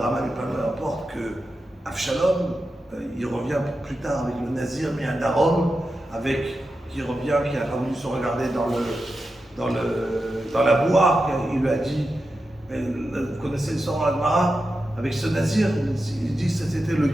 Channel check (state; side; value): normal; both; correlation 0.90